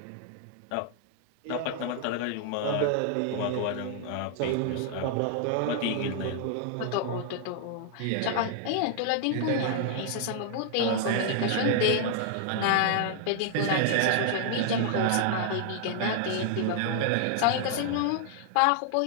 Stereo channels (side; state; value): both; different; correlation 0.00